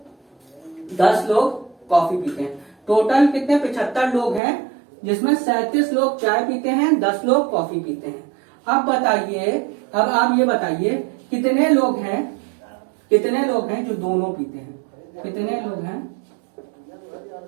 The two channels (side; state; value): left; drops out; at 4.4 s